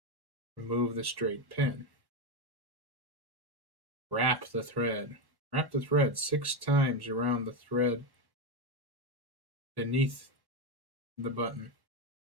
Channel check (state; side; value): late; left; 1.1 ms